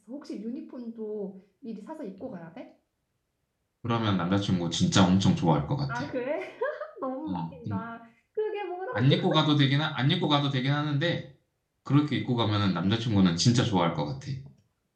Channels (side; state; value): both; identical; correlation 1.00